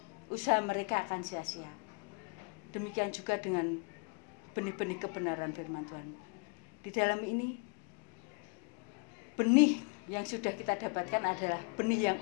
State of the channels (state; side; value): quieter; right; 35.5 dB